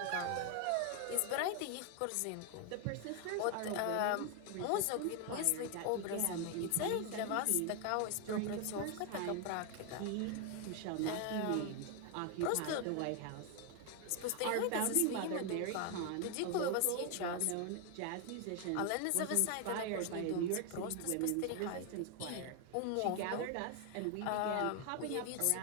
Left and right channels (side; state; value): both; different; correlation 0.01